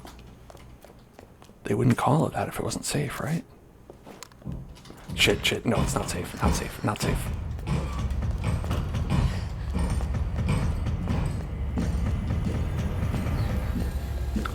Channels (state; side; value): identical; both; correlation 1.00